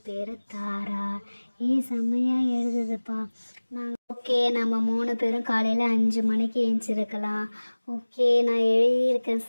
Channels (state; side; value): inverted; both; correlation -1.00